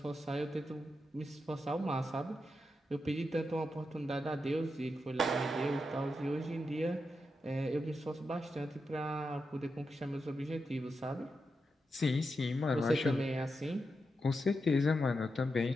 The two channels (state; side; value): normal; both; correlation 0.87